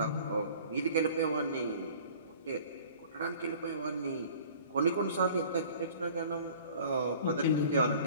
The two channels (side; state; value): both; inverted; correlation -0.48